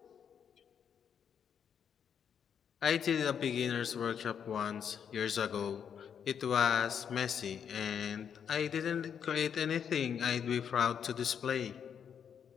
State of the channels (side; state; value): right; quieter; 7.9 dB